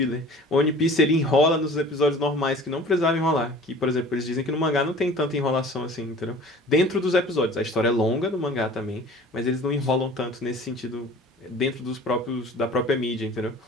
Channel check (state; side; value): normal; both; correlation 0.45